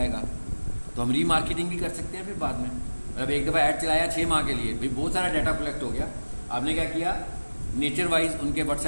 तो हम रीमार्केटिंग भी कर सकते हैं फिर बाद में। मतलब एक दफ़ा ऐड चलाया 6 माह के लिए, भाई बहुत सारा डाटा कलेक्ट हो गया, आपने क्या किया? नेचर वाइज उनके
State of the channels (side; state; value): both; inverted; correlation -1.00